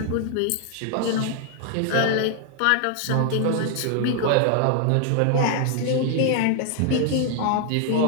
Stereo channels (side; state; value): both; different; correlation 0.00